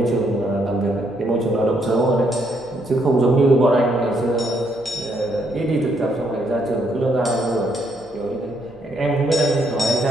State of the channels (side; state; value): right; noise; hum, 26 dB below the sound